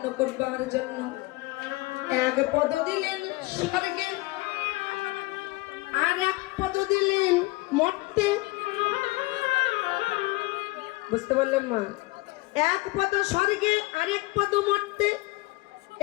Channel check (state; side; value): quieter; right; 21.9 dB